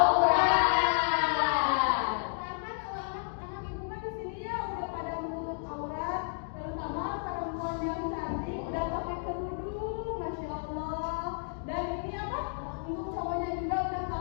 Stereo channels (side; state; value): right; silent; digital silence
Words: Karena kalau anak-anak ibu kan di sini ya udah pada menutup aurat, terutama perempuan yang cantik udah pakai kerudung, masya Allah. Dan ini apa? Untuk cowoknya juga udah